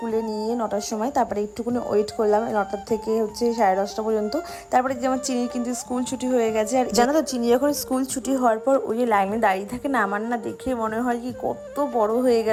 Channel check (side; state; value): both; identical; correlation 1.00